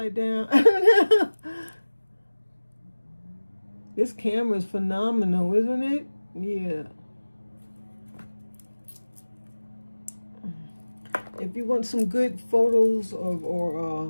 down? I don't know. This camera is phenomenal, isn't it? Yeah. If you want some good photos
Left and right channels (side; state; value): both; inverted; correlation -1.00